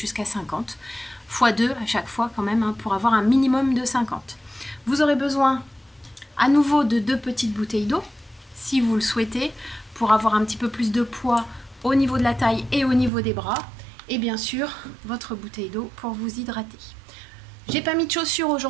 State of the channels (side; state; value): left; drops out; at 13.1 s